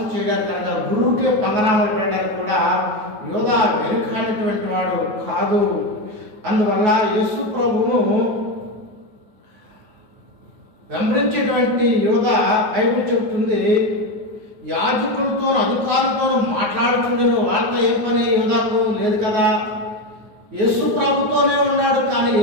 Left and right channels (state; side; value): late; left; 9.4 ms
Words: చేయడానికి, కనుక గురువుకే పంగనామాలు పెట్టడానికి కూడా యోధ వెనుకానటువంటి వాడు కాదు. అందువల్ల యేసు ప్రభును వెంబడించేటువంటి యోధ బైబిల్ చెబుతుంది, యాజకులతో అధికారులతో మాట్లాడుతుండేను. వాళ్ళతో ఏం పని యోధాకు లేదు కదా, యేసు ప్రభుతోనే ఉన్నాడు. కానీ